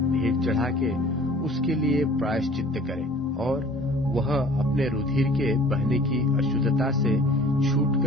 चढ़ा के उसके लिए प्रायश्चित्त करे, और वह अपने रुधिर के बहने की अशुद्धता से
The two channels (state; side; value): normal; both; correlation 0.49